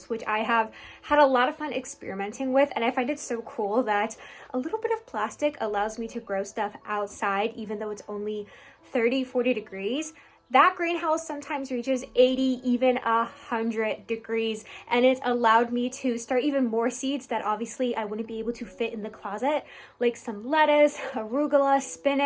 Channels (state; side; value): identical; both; correlation 1.00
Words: which I have had a lot of fun experimenting with, and I find it so cool that a little bit of plastic allows me to grow stuff outside, even though it's only 30, 40 degrees. That greenhouse sometimes reaches 80, even 100 degrees, and it's allowed me to start even more seeds that obviously I wouldn't be able to fit in the closet, like some lettuce, arugula,